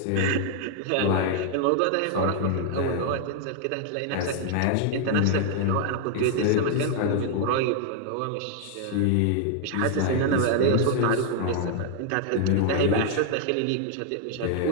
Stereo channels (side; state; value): both; different; correlation 0.00